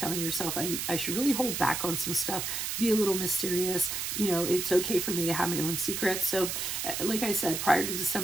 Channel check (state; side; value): noise; right; hiss, 3 dB below the sound